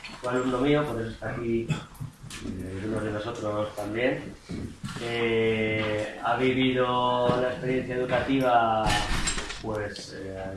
Fue alumno mío, por eso está aquí uno de nosotros también. Ha vivido la experiencia educativa pues,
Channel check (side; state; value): both; identical; correlation 1.00